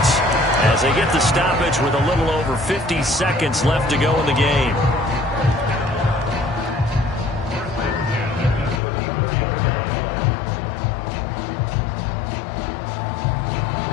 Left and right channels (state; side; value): drops out; right; at 8.8 s